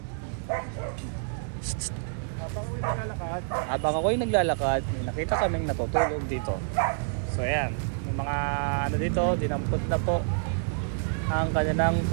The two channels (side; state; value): left; silent; 59 dB below the other